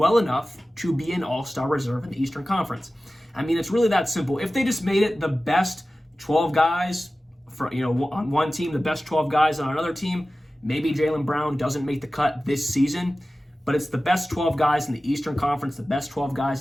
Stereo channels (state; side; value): normal; both; correlation 0.96